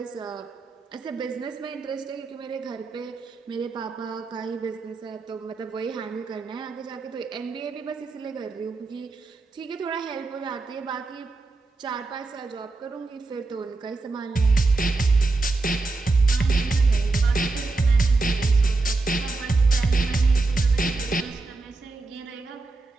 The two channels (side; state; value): left; quieter; 3.6 dB